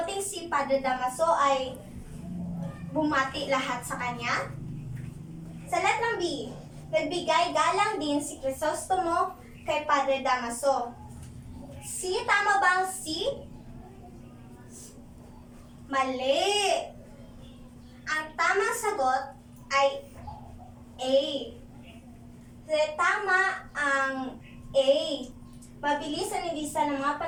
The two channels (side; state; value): both; identical; correlation 1.00